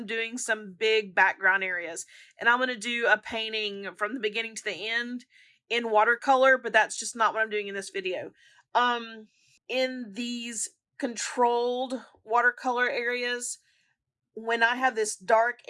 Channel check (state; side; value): identical; both; correlation 1.00